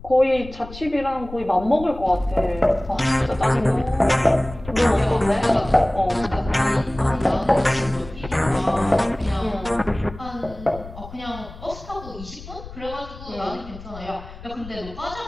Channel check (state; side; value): noise; left; rumble, 15 dB below the sound